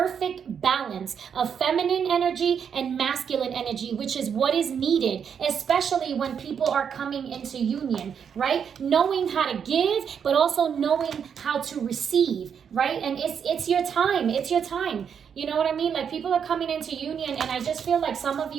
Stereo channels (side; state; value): left; quieter; 7.4 dB